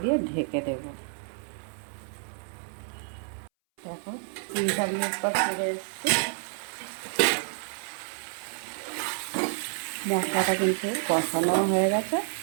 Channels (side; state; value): left; silent; 58 dB below the other